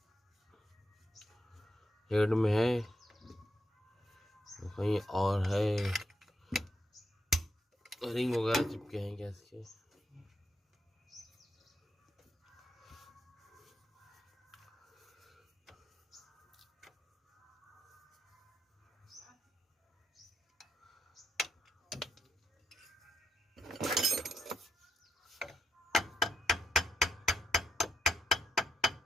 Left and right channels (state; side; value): normal; both; correlation 0.80